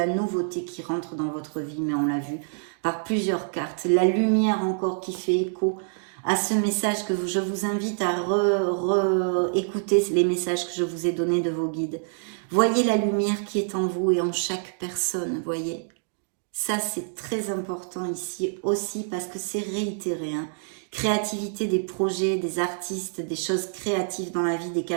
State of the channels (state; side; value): silent; left; digital silence